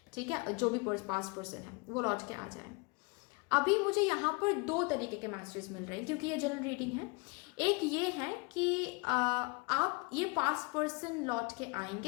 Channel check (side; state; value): right; quieter; 29.8 dB